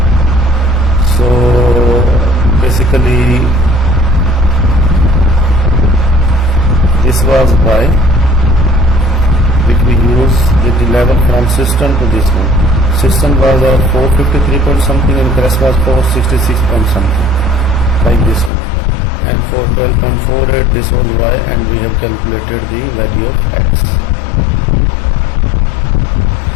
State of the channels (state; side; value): drops out; right; at 18.5 s